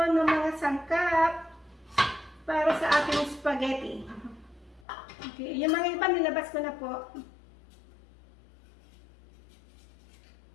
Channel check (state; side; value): drops out; right; at 4.9 s